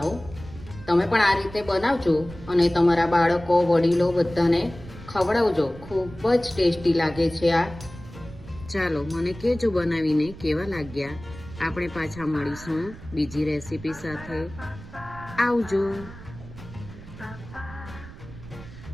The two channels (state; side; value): noise; right; rumble, 16 dB below the sound